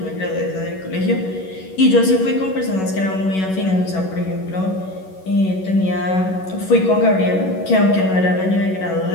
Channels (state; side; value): late; right; 11 ms